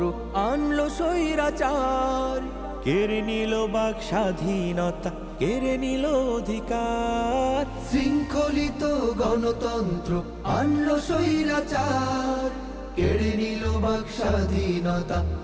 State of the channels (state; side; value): identical; both; correlation 1.00